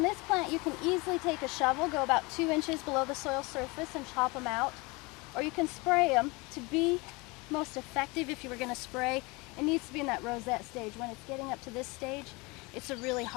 this plant, you can easily take a shovel, go about 2 inches below the soil surface and chop them out. Or you can spray them. To be most effective, if you were going to spray, it needs to be in that rosette stage. When it's getting up to this stage, it's a really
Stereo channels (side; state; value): right; quieter; 25.9 dB